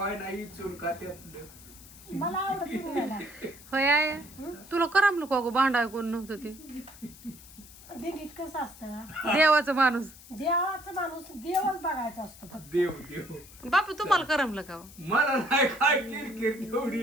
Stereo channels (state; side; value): noise; left; hiss, 20 dB below the sound